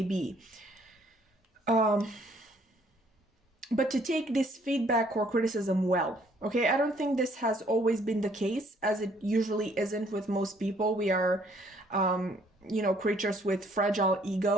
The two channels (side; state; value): both; normal; correlation 0.63